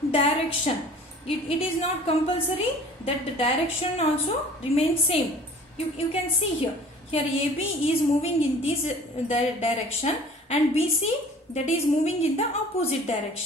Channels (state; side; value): normal; both; correlation 0.47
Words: direction. It is not compulsory that the direction also remains same. You can see here. Here AB is moving in this direction and BC, that is moving in the opposite